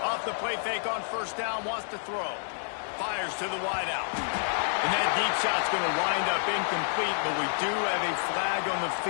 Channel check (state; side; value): silent; right; digital silence